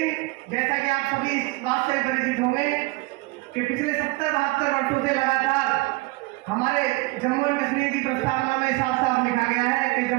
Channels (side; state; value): left; quieter; 23.4 dB